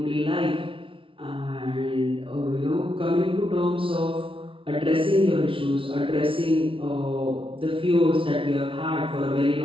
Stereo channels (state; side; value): late; left; 0.25 ms